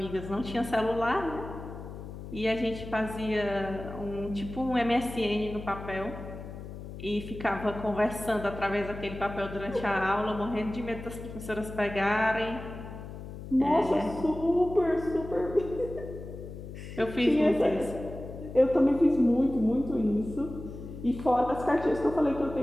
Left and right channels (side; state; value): left; noise; hum, 11 dB below the sound